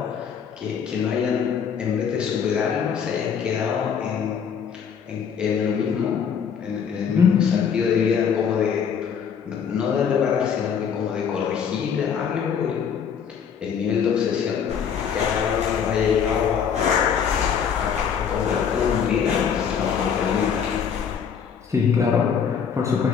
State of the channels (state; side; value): quieter; right; 7.2 dB